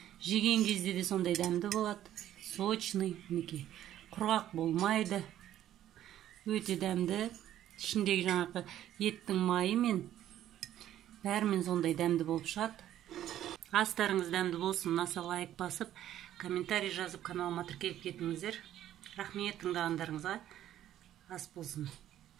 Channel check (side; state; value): left; quieter; 12.1 dB